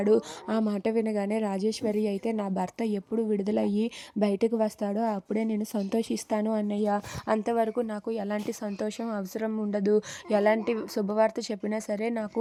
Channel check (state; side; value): identical; both; correlation 1.00